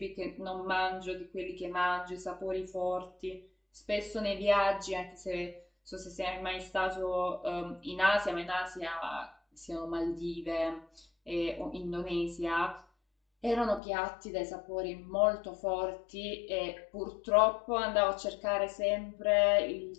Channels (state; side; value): drops out; right; at 13.8 s